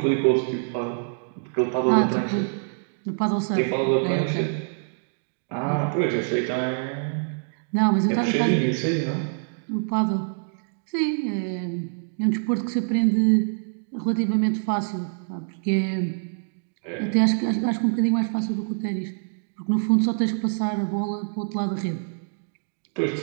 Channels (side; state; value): left; silent; digital silence